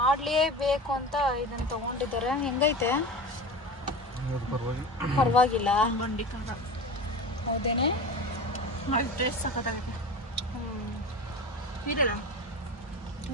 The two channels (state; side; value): normal; both; correlation 0.30